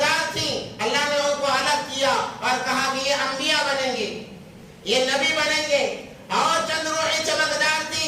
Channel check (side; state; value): both; identical; correlation 1.00